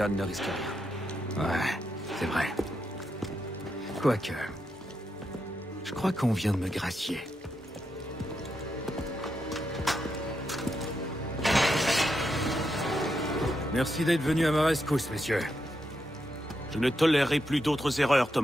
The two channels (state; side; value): normal; both; correlation 0.83